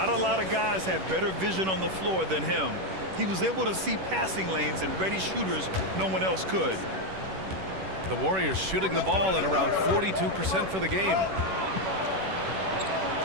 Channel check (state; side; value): late; left; 11 ms